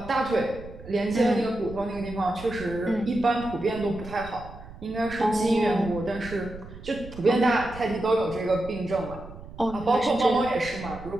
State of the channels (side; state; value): right; noise; rumble, 15 dB below the sound